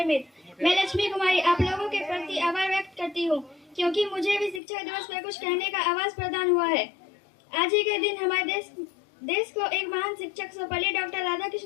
मित्र, मैं लक्ष्मी कुमारी आप लोगों के प्रति आभार व्यक्त करती हूँ क्योंकि मुझे भी शिक्षक दिवस पर कुछ कहने का आवाज प्रदान हुआ है। आज ही के दिन हमारे देश को एक महान शिक्षक सर्वपल्ली डॉक्टर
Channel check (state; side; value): drops out; right; at 4.6 s